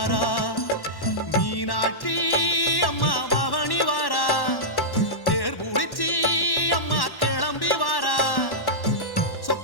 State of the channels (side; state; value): right; late; 1.1 ms